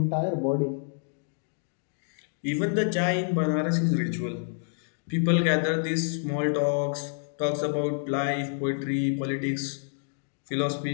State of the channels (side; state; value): right; silent; digital silence